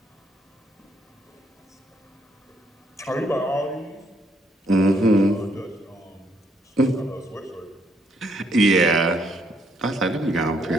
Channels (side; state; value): both; normal; correlation 0.71